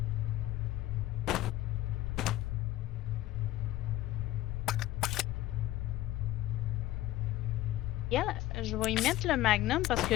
Yeah, je vais y mettre le magnum parce que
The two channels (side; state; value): right; quieter; 15.3 dB